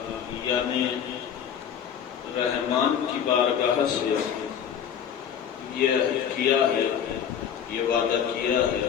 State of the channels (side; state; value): right; quieter; 8.5 dB